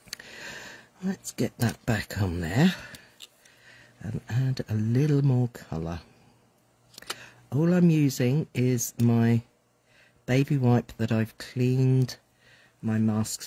Let's get that back on there and add a little more colour. All I'm using is my baby wipe that I've cleaned my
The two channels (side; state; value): both; identical; correlation 1.00